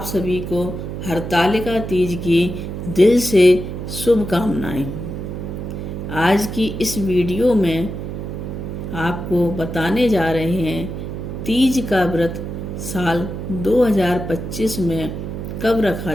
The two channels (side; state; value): right; noise; hum, 6 dB below the sound